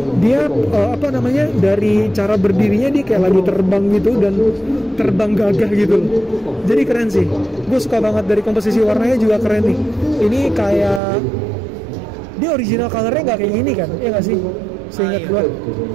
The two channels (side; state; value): left; drops out; at 11.0 s